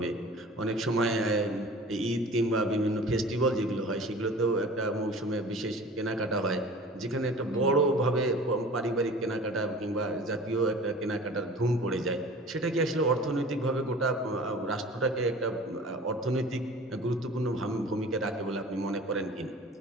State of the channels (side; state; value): both; normal; correlation 0.42